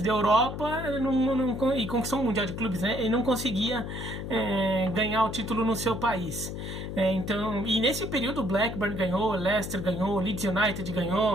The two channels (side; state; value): left; noise; hum, 6 dB below the sound